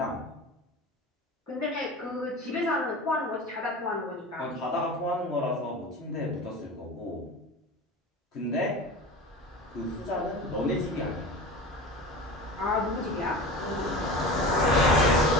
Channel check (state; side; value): normal; both; correlation 0.33